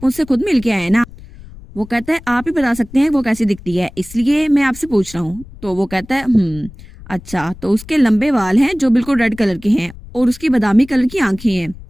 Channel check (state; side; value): noise; left; rumble, 18 dB below the sound